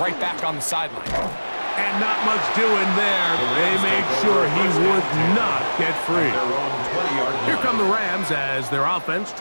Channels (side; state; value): both; inverted; correlation -1.00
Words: back on the sideline. And not much doing there. They made sure he would not get free. Here come the Rams as their offense